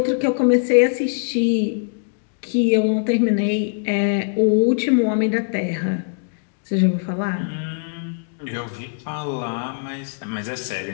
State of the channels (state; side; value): silent; right; digital silence